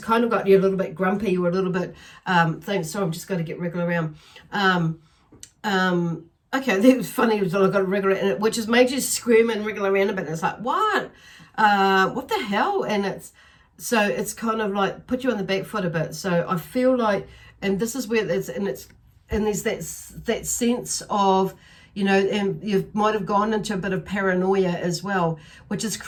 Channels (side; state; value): both; identical; correlation 1.00